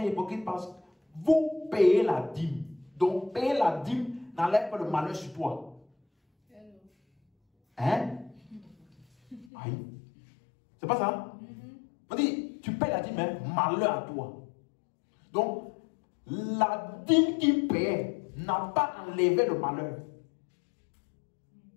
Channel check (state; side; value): drops out; right; at 9.5 s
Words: hypocrites, parce que vous payez la dîme. Donc, payer la dîme n'enlève pas le malheur sur toi. Hein? Aïe. C'est pas ça? On dit, tu payes la dîme, hein? Malheur à toi. Donc, la dîme qu'il paie n'a pas enlevé le malheur.